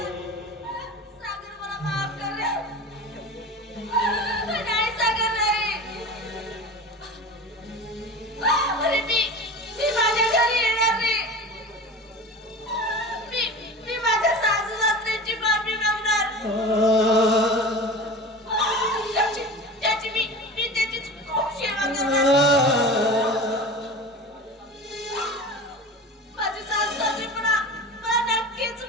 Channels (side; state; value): both; normal; correlation 0.33